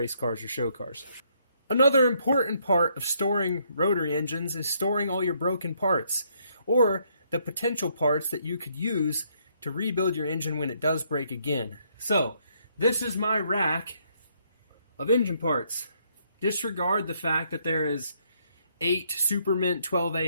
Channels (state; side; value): inverted; both; correlation -0.71